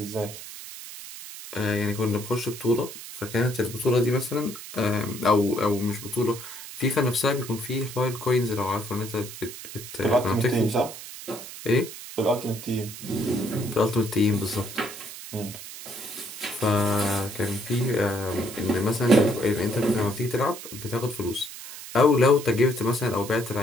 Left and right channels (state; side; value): noise; right; hiss, 12 dB below the sound